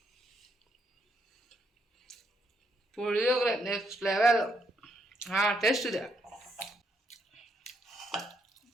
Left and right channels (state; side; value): normal; both; correlation 0.75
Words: Puliyogare next level. ಟೇಸ್ಟ್ ಇದೆ.